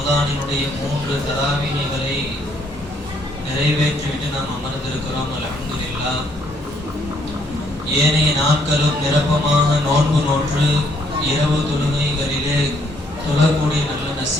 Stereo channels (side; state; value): both; normal; correlation 0.69